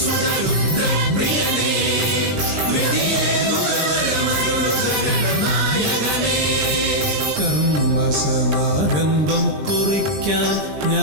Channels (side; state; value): left; late; 20 ms